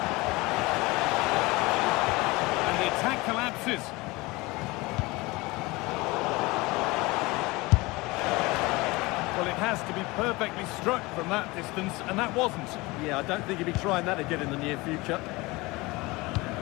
Collapses. Well, it has to be perfectly struck from that distance, and that wasn't. Yeah, I don't think he'll be trying that again in the near future.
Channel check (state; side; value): quieter; right; 22.8 dB